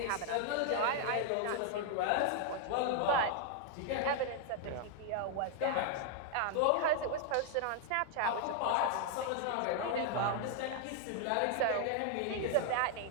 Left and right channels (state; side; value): different; both; correlation 0.00